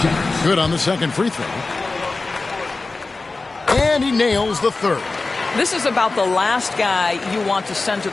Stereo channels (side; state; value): right; quieter; 3.6 dB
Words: Good on the second free throw. And he nails the third. This is about the last guy you want to send to